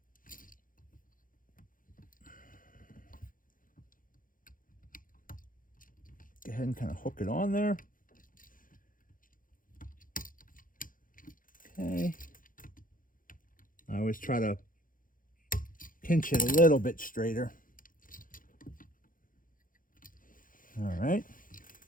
Go ahead and kind of hook it on there. Okay. I always try to pinch it a little bit straighter. All right.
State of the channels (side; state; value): right; late; 0.40 ms